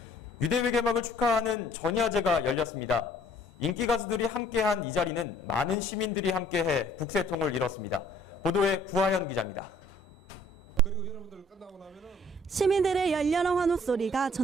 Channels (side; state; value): both; normal; correlation 0.58